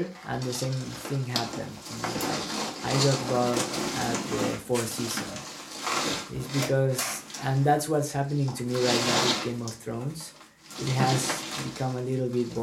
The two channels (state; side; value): identical; both; correlation 1.00